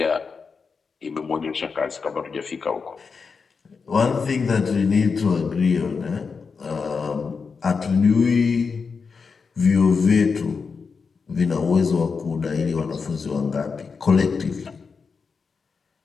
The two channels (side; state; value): right; quieter; 5.2 dB